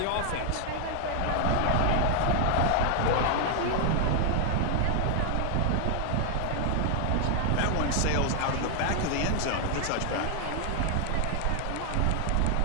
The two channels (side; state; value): both; different; correlation 0.00